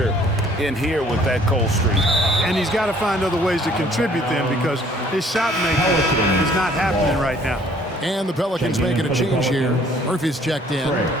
in here with that cold streak. And he's got to find other ways to contribute then because his shot making is not happening right now. And the Pelicans making a change here. Murphy's checked in.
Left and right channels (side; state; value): both; normal; correlation 0.58